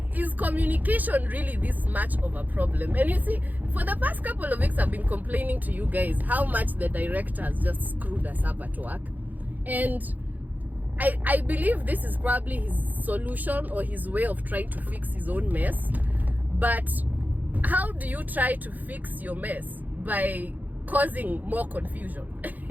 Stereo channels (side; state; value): left; late; 0.082 ms